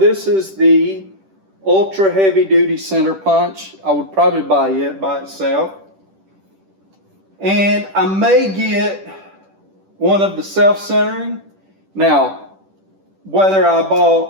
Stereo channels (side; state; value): left; late; 10 ms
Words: is the ultra heavy duty center punch. I would probably buy it by itself. And I may get one of the self-centering. Now, whether I